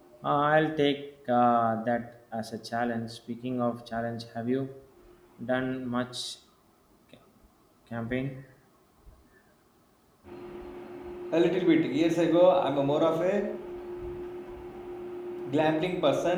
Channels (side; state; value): both; identical; correlation 1.00